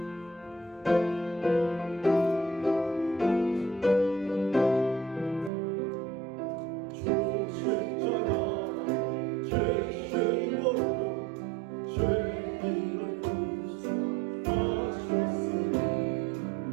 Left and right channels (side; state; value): left; drops out; at 5.5 s